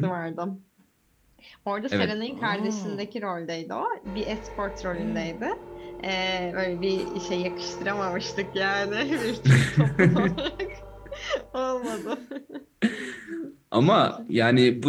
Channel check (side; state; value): both; identical; correlation 1.00